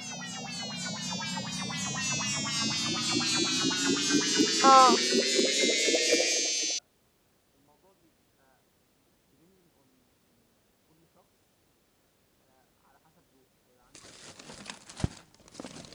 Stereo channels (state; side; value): identical; both; correlation 1.00